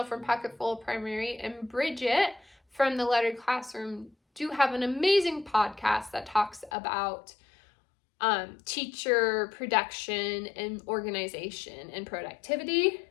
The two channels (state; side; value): drops out; right; at 6.7 s